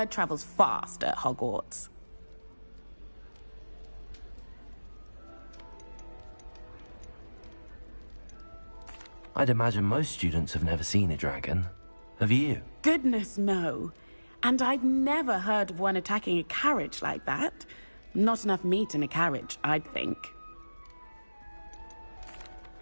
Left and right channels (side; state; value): both; inverted; correlation -1.00